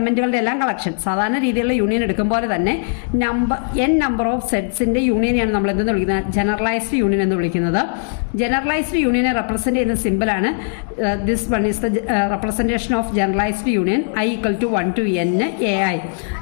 എല്ലാം കളക്ഷൻ. സാധാരണ രീതിയിലുള്ള യൂണിയൻ എടുക്കുമ്പോൾ തന്നെ നമ്പർ ഓഫ് സെറ്റ്സിൻ്റെ യൂണിയനെയാണ് നമ്മൾ എന്തെന്ന് വിളിക്കുന്നത്, ജനറലൈസ്ഡ് യൂണിയൻ എന്ന് വിളിക്കുന്നത്. ജനറലൈസ്ഡ് യൂണിയനെ റെപ്രസെൻറ്റ് ചെയ്യുന്ന സിമ്പിളാണ് this one is the representation of generalised union I equal to 1 to n ai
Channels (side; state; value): right; silent; digital silence